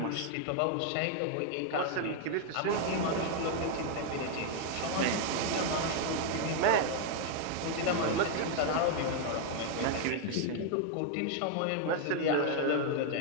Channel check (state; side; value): different; both; correlation 0.00